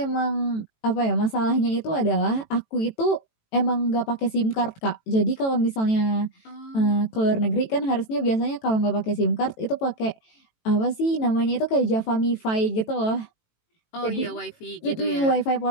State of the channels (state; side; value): late; right; 18 ms